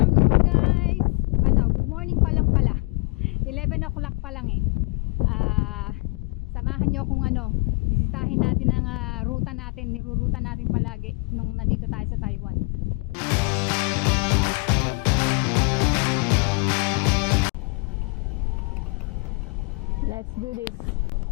guys. Good morning pa lang pala. 11 o'clock pa lang eh. Samahan nyo kung bisitahin natin ang ruta natin, niruruta natin palagi nung nandito tayo sa Taiwan. Let's do this.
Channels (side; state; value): right; quieter; 31.1 dB